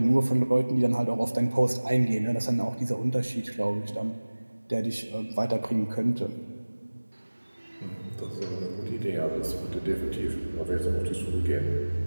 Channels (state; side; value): inverted; both; correlation -1.00